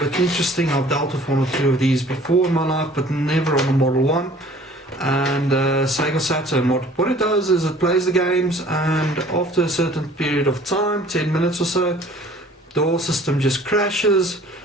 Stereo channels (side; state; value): both; normal; correlation 0.52